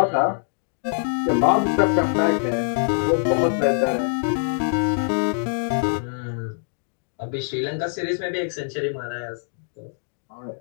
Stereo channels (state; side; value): silent; right; digital silence